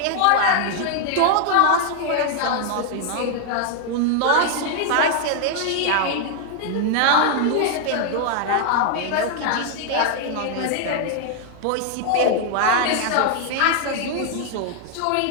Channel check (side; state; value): both; different; correlation 0.00